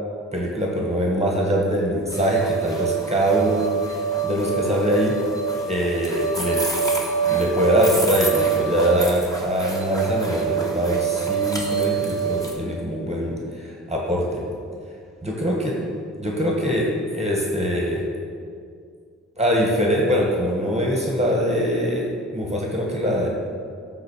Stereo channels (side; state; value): both; normal; correlation 0.31